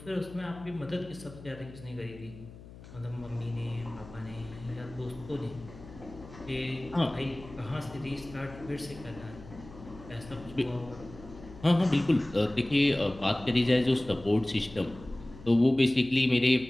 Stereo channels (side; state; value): left; noise; hum, 17 dB below the sound